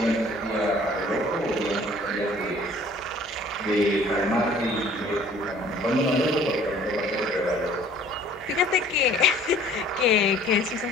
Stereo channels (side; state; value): both; normal; correlation 0.53